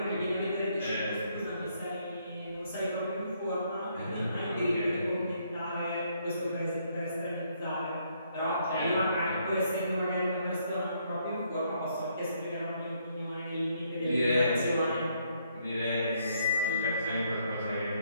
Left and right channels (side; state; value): both; inverted; correlation -0.71